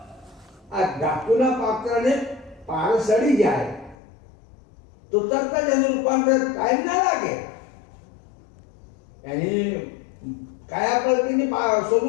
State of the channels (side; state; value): right; drops out; at 4.0 s